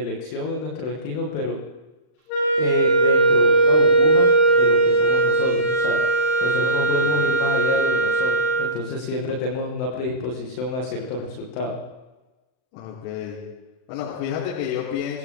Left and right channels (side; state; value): right; late; 39 ms